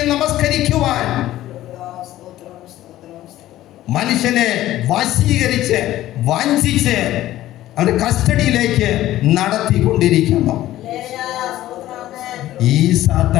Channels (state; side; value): quieter; right; 14.5 dB